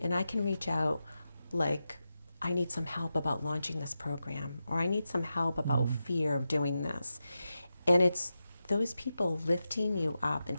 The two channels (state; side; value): inverted; both; correlation -0.90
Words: I can reach out like, I need some help about launching this program, or I need some help about fear of doing this. And it's those people lifting you up and